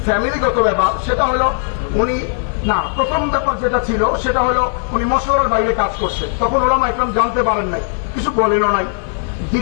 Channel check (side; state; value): right; silent; 62 dB below the other